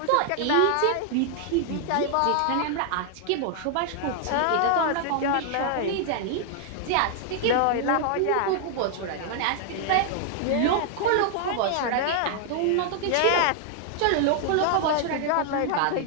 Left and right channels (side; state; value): both; different; correlation 0.00